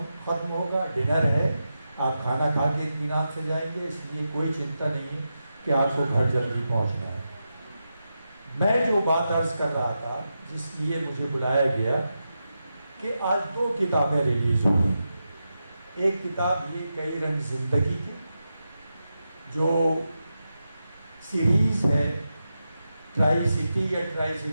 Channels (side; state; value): both; inverted; correlation -0.89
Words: खत्म होगा, डिनर है, आप खाना खा के इत्मीनान से जाएंगे। इसलिए कोई चिंता नहीं है कि आपको घर जल्दी पहुंचना है। मैं जो बात अर्ज कर रहा था, जिस लिए मुझे बुलाया गया, कि आज 2 किताबें रिलीज हुई। एक किताब ये कई रंग जिंदगी की, जो सीरीज है ट्राई सिटी या ट्राई